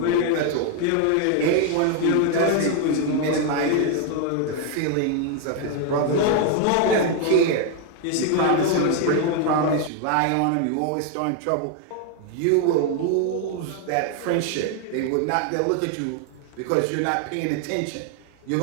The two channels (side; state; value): both; different; correlation 0.00